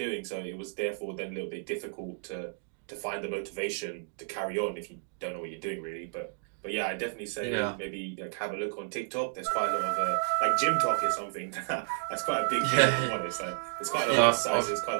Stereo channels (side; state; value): left; silent; digital silence